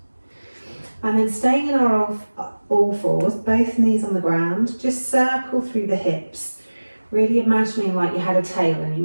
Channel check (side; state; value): both; inverted; correlation -1.00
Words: And then staying in our all fours, both knees on the ground, just circle through the hips, really imagining like you had a tail and you